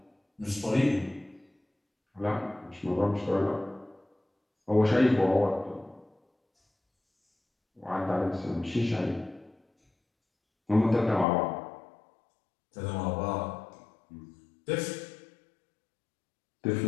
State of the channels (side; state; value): right; drops out; at 11.2 s